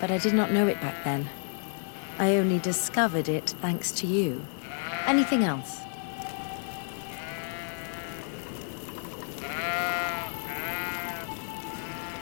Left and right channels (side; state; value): right; silent; 58 dB below the other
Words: I did not know it back then. I only discovered it thanks to you. Anything else?